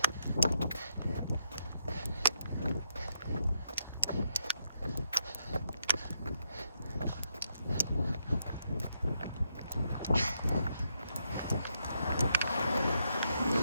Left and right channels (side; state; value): both; inverted; correlation -0.79